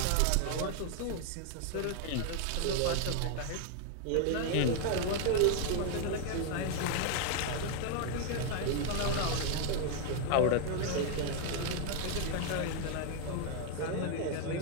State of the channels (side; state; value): both; different; correlation 0.01